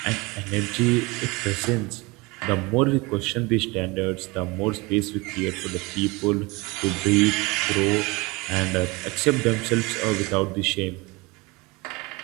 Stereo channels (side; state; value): left; quieter; 24.8 dB